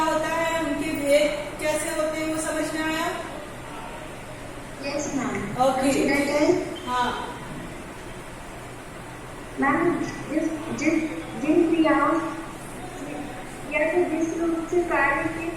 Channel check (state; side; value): identical; both; correlation 1.00